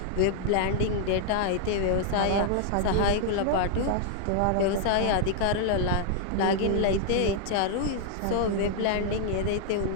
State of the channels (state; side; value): different; both; correlation 0.00